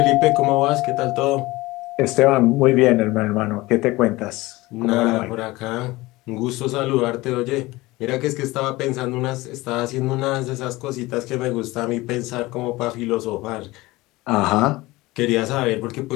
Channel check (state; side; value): quieter; right; 20.2 dB